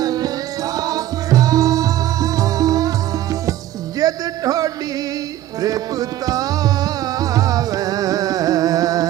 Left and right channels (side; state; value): left; quieter; 13.5 dB